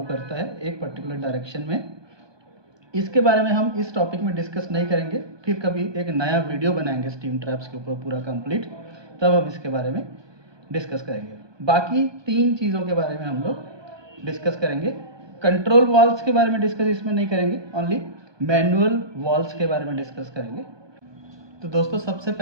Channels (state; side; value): late; left; 1.2 ms